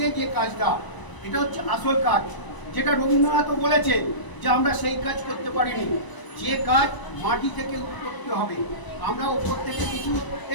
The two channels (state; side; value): late; right; 1.0 ms